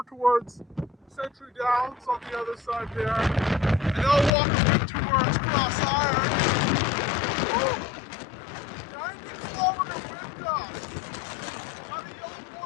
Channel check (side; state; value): right; drops out; at 4.3 s